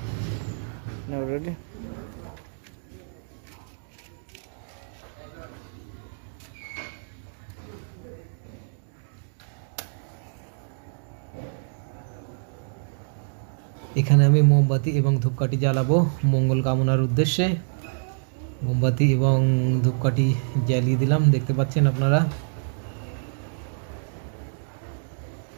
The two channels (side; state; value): left; silent; digital silence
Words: Now ready? এখানে আমি মোমবাতি এবং ধূপকাঠি জ্বালাবো মঙ্গল কামনার উদ্দেশ্যে। মোমবাতি এবং ধূপকাঠি জ্বালিয়ে দিলাম, দেখতে পাচ্ছেন আপনারা।